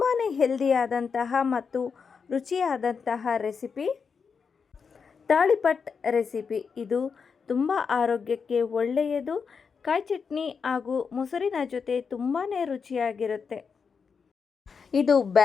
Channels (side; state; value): right; quieter; 5.8 dB